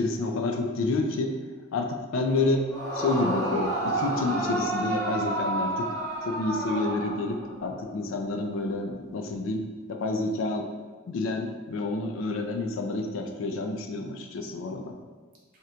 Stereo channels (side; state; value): both; normal; correlation 0.29